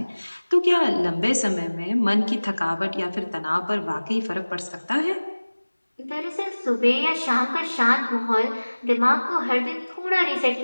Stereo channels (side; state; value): both; inverted; correlation -1.00